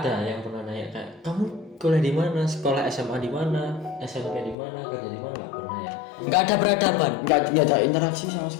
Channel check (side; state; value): right; drops out; at 4.5 s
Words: yang pernah nanya kayak kamu kuliah di mana, sekolah SMA di mana, SMP di mana, kerja di mana, nggak pernah ya. Nggak ada peradaban. Nggak ada interaksi sama